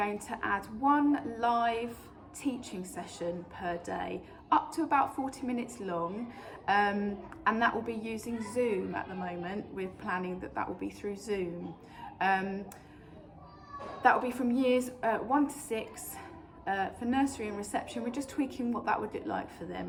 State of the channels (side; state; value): both; identical; correlation 1.00